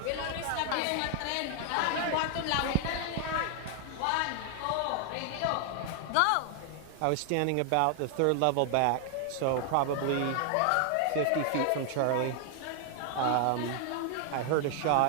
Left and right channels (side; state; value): both; different; correlation 0.00